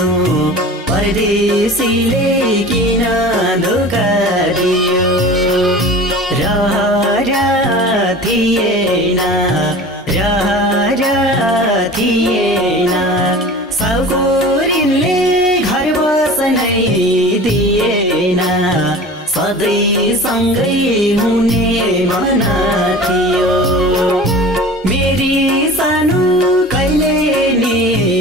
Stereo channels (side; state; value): both; normal; correlation 0.38